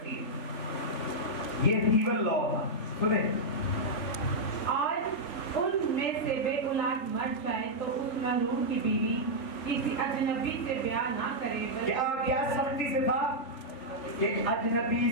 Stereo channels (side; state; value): right; late; 3.5 ms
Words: है। ये ईवल लॉ था। सुने, आज उनमें से बे औलाद मर जाए तो उस महरूम की बीवी किसी अजनबी से ब्याह ना करे। क्या क्या सख्ती से था कि